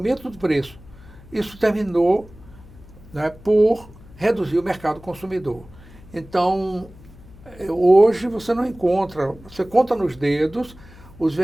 do preço. Isso terminou, né, por reduzir o mercado consumidor. Então, hoje você não encontra, você conta nos dedos os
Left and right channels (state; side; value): noise; left; hum, 21 dB below the sound